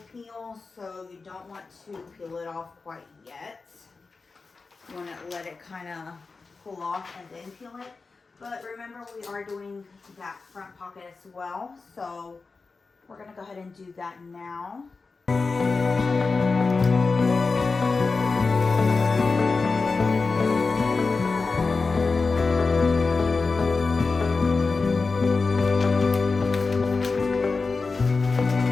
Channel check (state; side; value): quieter; right; 4.2 dB